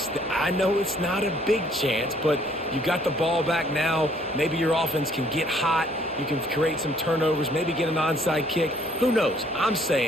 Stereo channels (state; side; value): normal; both; correlation 0.62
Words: I know it's not a big chance, but you got the ball back now. Maybe your offense can get hot. You can create some turnovers, maybe get an onside kick. Who knows? I'm